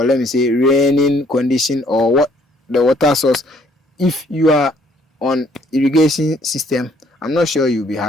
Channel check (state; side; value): normal; both; correlation 0.63